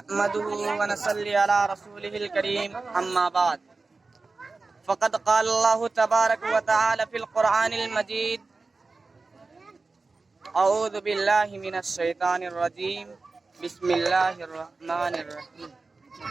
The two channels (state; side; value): quieter; left; 3.8 dB